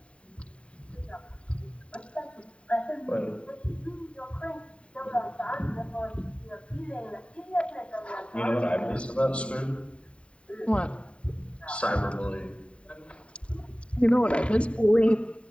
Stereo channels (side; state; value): right; late; 0.060 ms